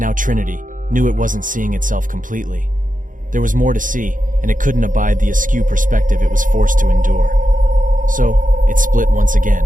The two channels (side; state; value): left; late; 0.39 ms